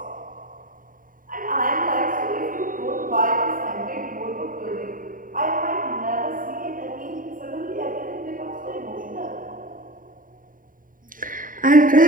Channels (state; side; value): late; left; 0.40 ms